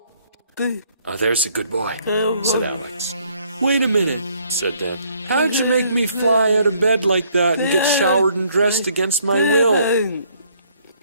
Oh, there's a good boy, said Alex. Wait a minute, said Dan. How'd you make me fly out of bed like that and get showered and dressed against my will?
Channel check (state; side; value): inverted; both; correlation -0.66